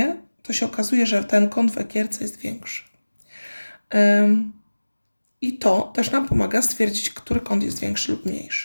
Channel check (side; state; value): both; inverted; correlation -1.00